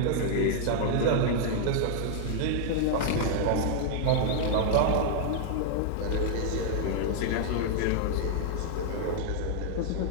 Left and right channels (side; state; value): both; different; correlation -0.01